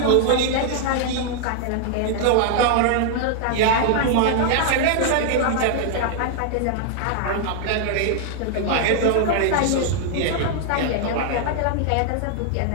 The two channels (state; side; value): different; both; correlation 0.00